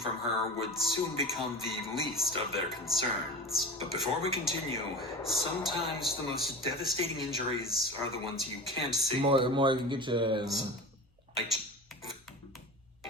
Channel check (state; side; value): normal; both; correlation 0.32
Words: her would soon become the least of their concerns. But before we continue, sometimes the most devastating injuries are the ones you can't see. More you can get your... Like,